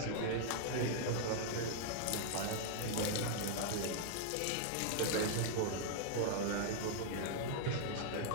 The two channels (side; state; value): both; different; correlation -0.01